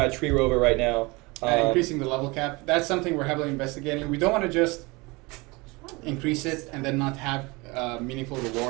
Tree Rover right now. increasing the level cap, that's something we're heavily investigating. We don't want to just increase it and then not have meaningful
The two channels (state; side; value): quieter; left; 25.1 dB